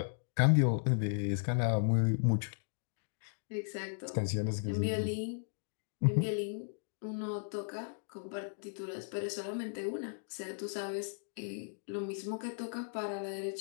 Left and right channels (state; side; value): silent; right; digital silence